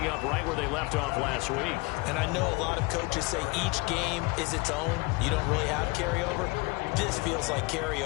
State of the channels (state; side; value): quieter; right; 25.8 dB